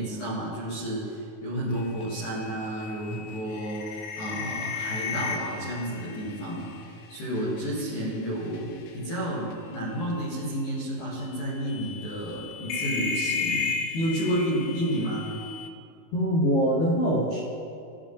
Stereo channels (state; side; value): late; right; 19 ms